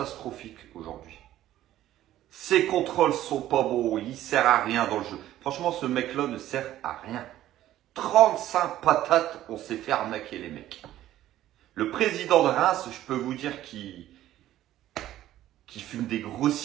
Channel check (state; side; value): quieter; left; 13.4 dB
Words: aujourd'hui. Ses contrôles sont pas bons, il sert à rien dans le jeu. Franchement, ce mec-là ne sert à rien. 35 patates, on s'est fait arnaquer les mecs. Le président de Reims, je peux vous dire qu'il fume des gros